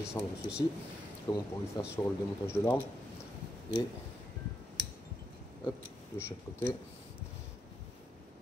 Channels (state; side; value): normal; both; correlation 0.81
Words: ceci, comme on pourrait le faire sur le démontage de l'arme, et hop, de chaque côté,